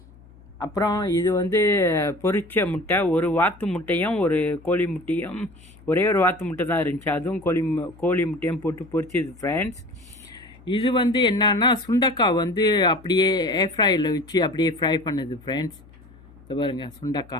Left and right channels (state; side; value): noise; left; hum, 24 dB below the sound